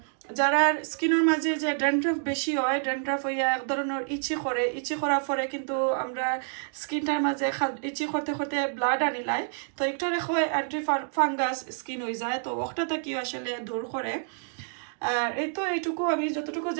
যারা স্কিনের মাঝে যে ড্যান্ড্রাফ বেশি হয়, ড্যান্ড্রাফ হইয়া এক ধরনের ইচি করে, ইচি করার পরে কিন্তু আমরা স্কিনটার মাঝে ইচি করতে করতে ব্লাড আনিলাই, তো একটা রেখো অ্যান্টি ফাঙ্গাস স্কিন হয়ে যায়, তো ওটাটা কি আসলে দূর করে। আর এই তো এইটুকু আমি যতটুকু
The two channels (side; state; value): left; silent; digital silence